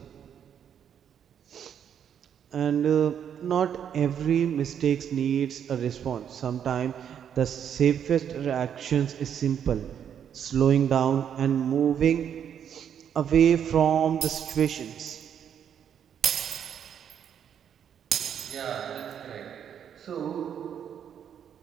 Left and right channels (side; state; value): left; quieter; 8.6 dB